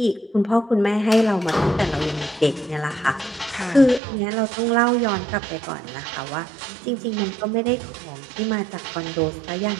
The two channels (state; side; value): drops out; left; at 4.0 s